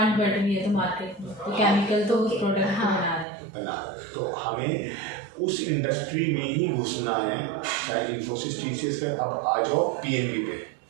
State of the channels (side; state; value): left; drops out; at 3.2 s